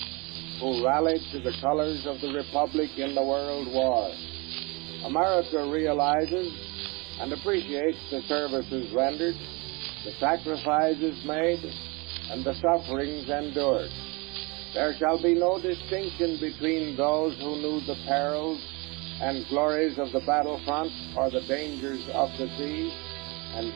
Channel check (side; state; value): left; quieter; 27.6 dB